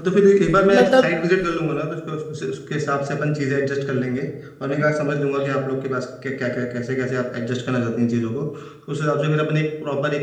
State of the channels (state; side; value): identical; both; correlation 1.00